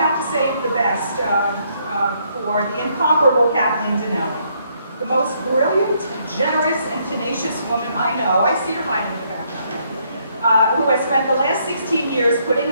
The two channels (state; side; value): inverted; both; correlation -0.71